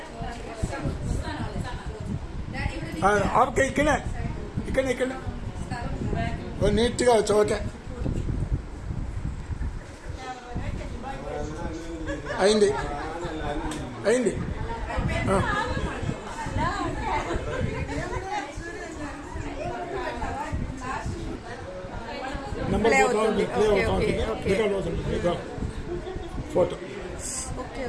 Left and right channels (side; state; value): both; identical; correlation 1.00